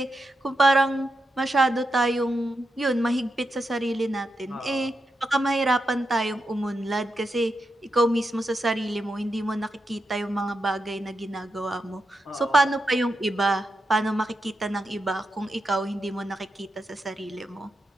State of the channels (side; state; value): both; normal; correlation 0.86